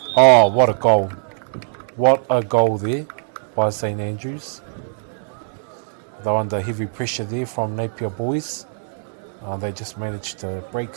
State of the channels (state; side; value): silent; left; 65 dB below the other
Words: Oh, what a goal. What a goal there by St Andrews. They're under heavy pressure there from Napier boys. They just managed to break